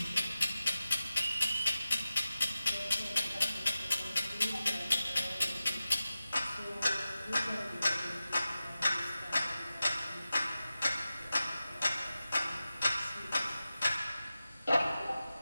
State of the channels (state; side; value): inverted; both; correlation -0.94